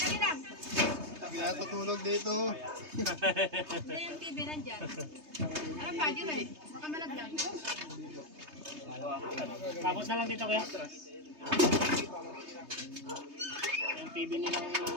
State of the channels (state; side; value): late; left; 3.2 ms